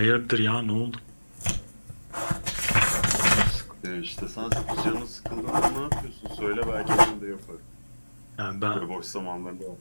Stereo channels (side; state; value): both; inverted; correlation -1.00